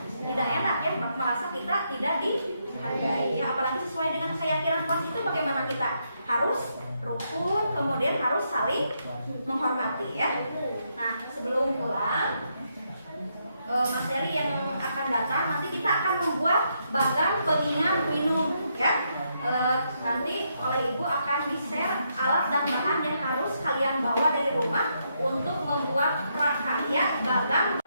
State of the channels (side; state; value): both; inverted; correlation -0.78